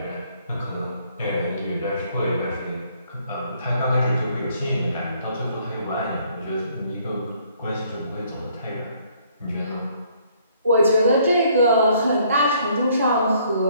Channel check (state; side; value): inverted; both; correlation -0.64